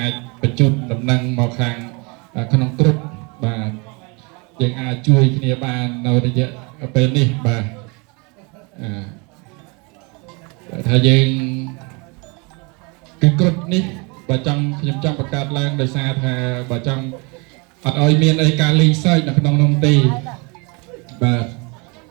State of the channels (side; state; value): left; quieter; 30.0 dB